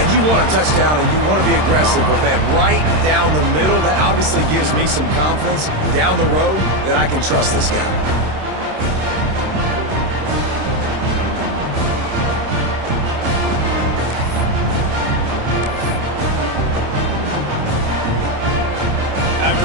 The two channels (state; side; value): late; left; 26 ms